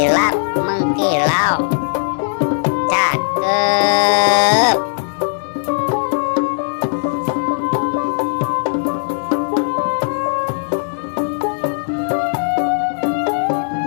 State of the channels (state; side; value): silent; right; digital silence